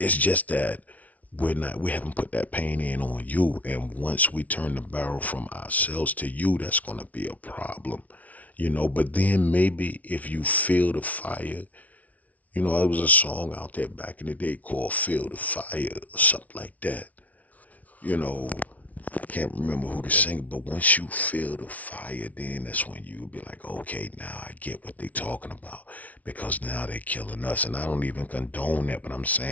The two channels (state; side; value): late; right; 0.071 ms